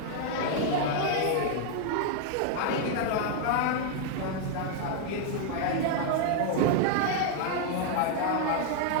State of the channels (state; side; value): different; both; correlation 0.00